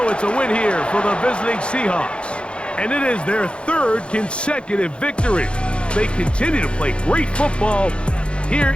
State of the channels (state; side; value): late; right; 0.057 ms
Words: it's a win here for the visiting Seahawks. And it is their 3rd consecutive victory. They continue to play great football here